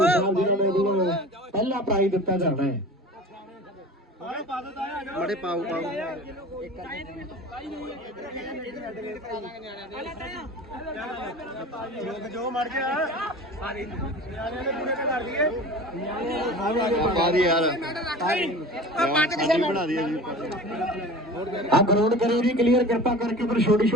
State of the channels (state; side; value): normal; both; correlation 0.37